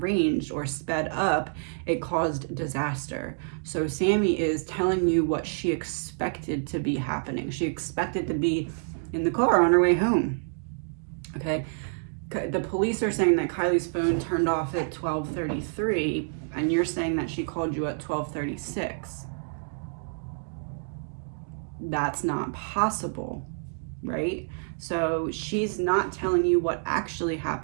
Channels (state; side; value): silent; left; digital silence